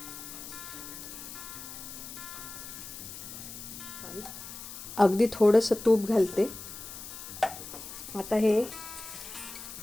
अगदी थोडंसं तूप घालते। आता हे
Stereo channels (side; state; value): left; noise; hiss, 11 dB below the sound